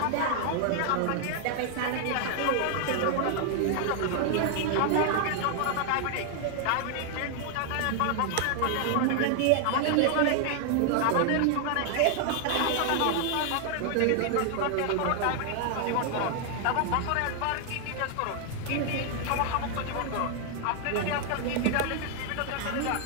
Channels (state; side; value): different; both; correlation 0.00